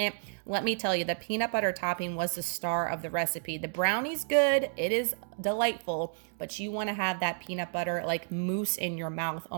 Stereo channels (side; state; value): left; silent; digital silence